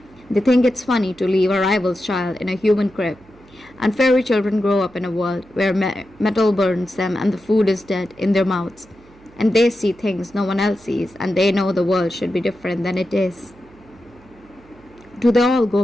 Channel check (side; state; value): right; noise; hum, 26 dB below the sound